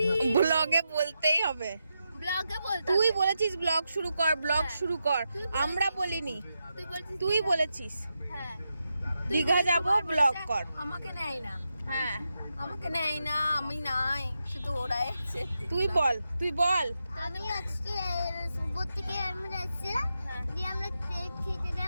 ব্লগে বলতেই হবে, ব্লগে বলতে। তুই বলেছিস ব্লগ শুরু কর, ব্লগ শুরু কর, আমরা বলিনি, তুই বলেছিস হ্যাঁ দীঘা যাব ব্লগ কর। আমাকে নেয় না, হ্যাঁ আমাকে নেয় না, আমি নাই, শুধু ওরাই আছে। তুই বল আমি আজকে সুবোধ থেকে আমরা যাচ্ছি, দিয়ে আমরা কেক খেতে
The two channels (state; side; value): inverted; both; correlation -0.87